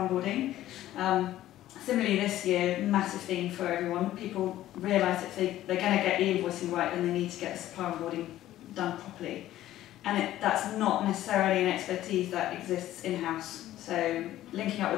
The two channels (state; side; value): quieter; right; 13.8 dB